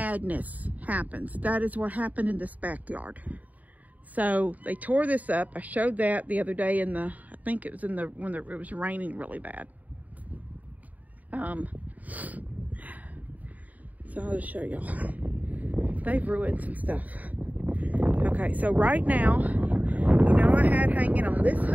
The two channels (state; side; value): late; left; 0.075 ms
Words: happens. That is what happened in this backyard. So they tore this up. I showed that the other day in the, I think it was in the, when it was raining really bad. So I'll just show y'all. They've ruined some stuff. Okay, so right now, you know, I had hanging on this